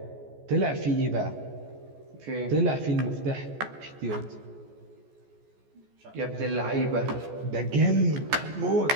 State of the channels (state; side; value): late; left; 14 ms